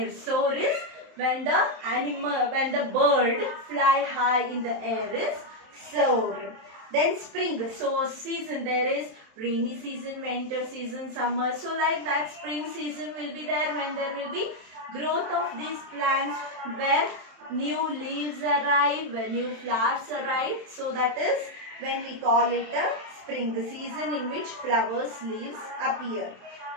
Soar is when the bird fly high in the air is soar. Then spring, so season, there is rainy season, winter season, summer. So like that, spring season will be there when there will be growth of these plants, where new leaves arrive, when new flowers arrive. So that is when we call it a spring, the season in which flowers, leaves appear.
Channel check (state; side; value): late; left; 27 ms